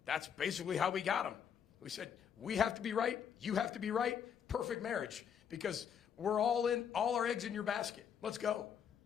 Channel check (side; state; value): right; quieter; 8.0 dB